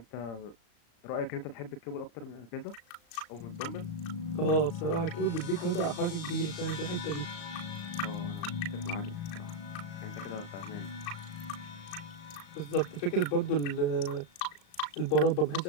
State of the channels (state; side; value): late; right; 35 ms